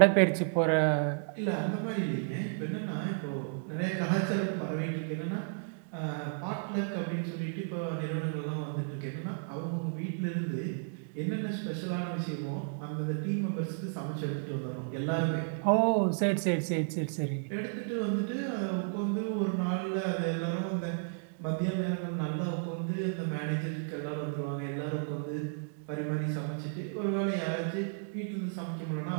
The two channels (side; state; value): left; silent; digital silence